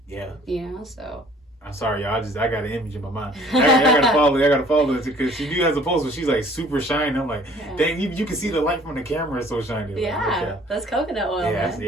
Yeah. You know, so. I'm sorry, y'all. I got an image in my mind. I gotta follow it because she do has a post where she's like super shiny. I'm like, dang, you can see the light from the camera. It's so shiny. Yeah, that's coconut oil.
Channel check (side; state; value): both; normal; correlation 0.54